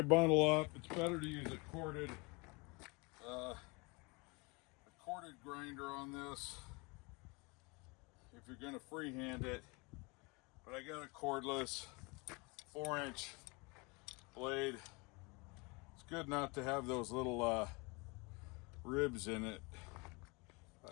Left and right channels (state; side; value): quieter; right; 28.0 dB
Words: bundle up, it's better to use a corded grinder on this if you're gonna freehand it. But I got a cordless 4-inch blade. It's good not to have those little ribs in it.